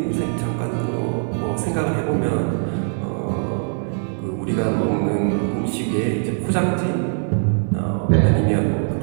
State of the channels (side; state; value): left; silent; 63 dB below the other